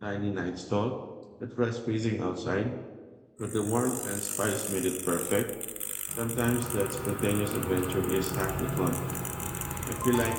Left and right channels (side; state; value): both; identical; correlation 1.00